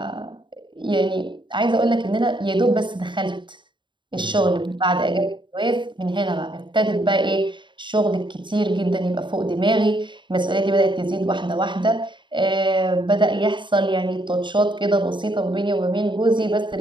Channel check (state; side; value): late; left; 0.23 ms